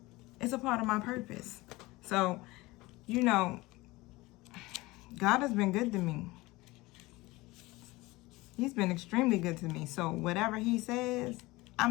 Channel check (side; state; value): right; quieter; 21.0 dB